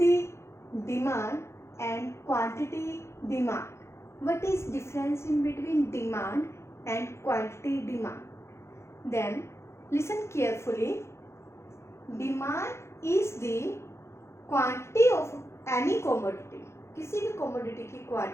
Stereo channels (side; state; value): right; late; 0.13 ms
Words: demand and quantity demand. What is difference in between demand and quantity demand? Then listen carefully. Demand is the quantity of any commodity. किसी भी commodity की